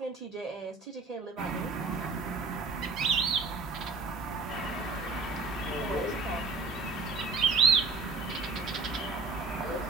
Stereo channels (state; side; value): quieter; left; 4.2 dB